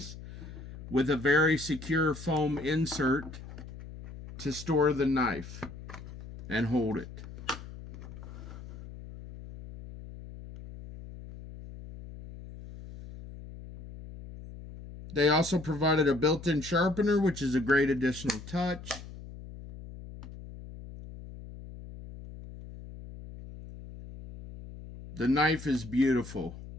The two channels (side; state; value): left; noise; hum, 14 dB below the sound